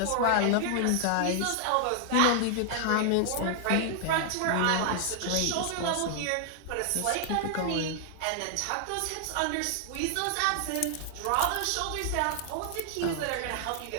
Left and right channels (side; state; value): both; different; correlation 0.00